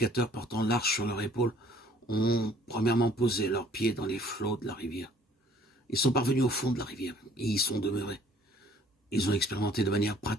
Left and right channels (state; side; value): normal; both; correlation 0.56